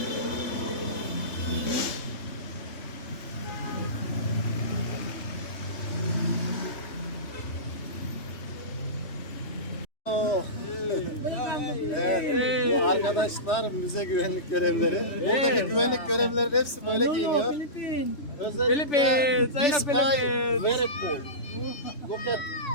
Evet, bu arkadaşlar müze güvenlik görevlileri. Buradaki güvenlik görevlileri hepsi böyle giyiniyor. Özellikle this guy very cool. Look at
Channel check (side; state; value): right; late; 3.2 ms